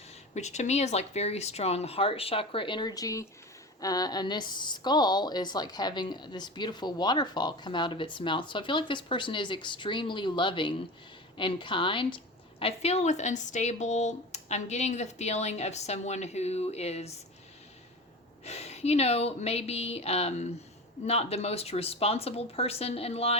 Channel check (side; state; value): both; normal; correlation 0.30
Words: which to me is like very strong heart chakra energy. And this skull is like having this beautiful waterfall come out of its mouth. So I feel like this person is extremely loving and kind. I feel with unstable, I'm getting the feeling of someone who is, maybe not the most responsible person in